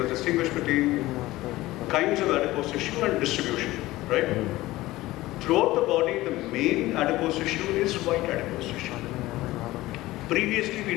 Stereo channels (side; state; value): right; quieter; 17.8 dB